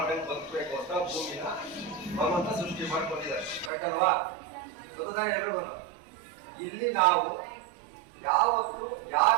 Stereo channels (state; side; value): drops out; left; at 3.7 s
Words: ಬದುಕಬೇಕು ಅಂತ ಭೂಮಿನ ಭಗವಂತ ಸೃಷ್ಟಿ ಮಾಡ್ಕೊಂಡಿದ್ದಾರೆ. ಕರೆಕ್ಟ್ ಅಲ್ವಾ? ಗೊತ್ತಾನೆ ಎಲ್ರಿಗೂ. ಇಲ್ಲಿ ನಾವು ಯಾವತ್ತು